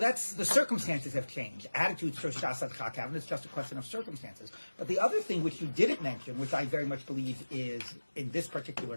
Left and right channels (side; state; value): both; inverted; correlation -1.00